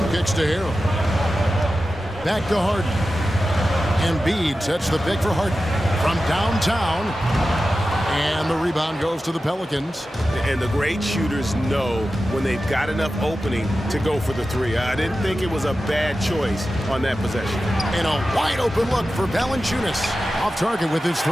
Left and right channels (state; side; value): normal; both; correlation 0.93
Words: kicks to Harrell. Back to Harden. Embiid sets the pick for Harden from downtown. And the rebound goes to the Pelicans. And the great shooters know when they've got enough opening to go for the 3. I didn't think it was a bad choice on that possession. And a wide open look for Valanciunas. Off target with his 3.